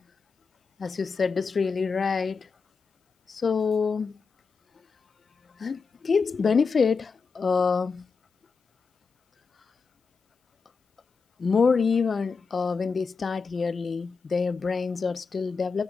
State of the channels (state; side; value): quieter; right; 5.0 dB